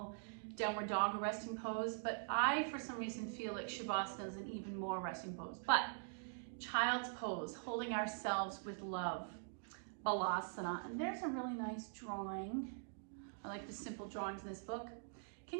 downward dog a resting pose, but I, for some reason, feel like Shavasana is an even more resting pose. But child's pose, holding ourselves with love, Balasana. And there's a really nice drawing. I like the simple drawings in this book.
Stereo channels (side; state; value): left; silent; digital silence